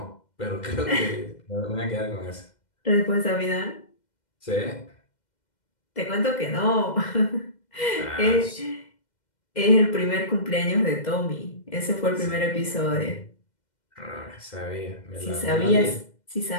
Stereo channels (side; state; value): right; late; 2.1 ms